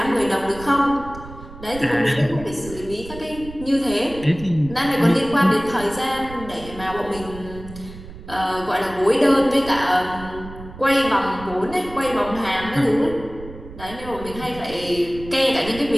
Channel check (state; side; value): noise; right; rumble, 15 dB below the sound